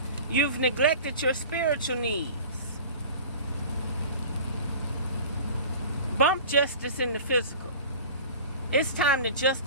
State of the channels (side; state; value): both; inverted; correlation -0.40